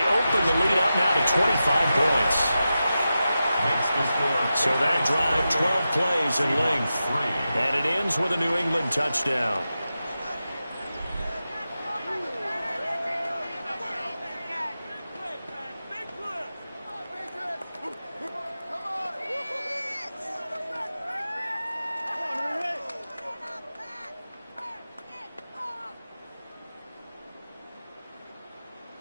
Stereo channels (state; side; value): inverted; both; correlation -0.92